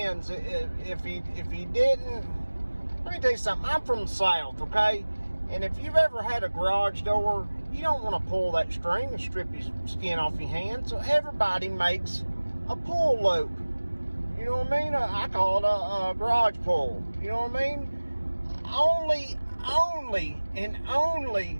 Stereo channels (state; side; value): inverted; both; correlation -1.00